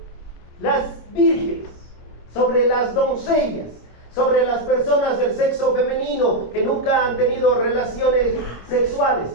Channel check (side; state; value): right; late; 25 ms